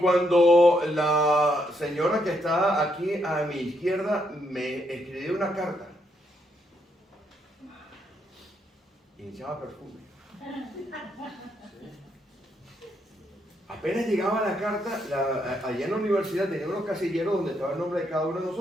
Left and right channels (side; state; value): both; normal; correlation 0.76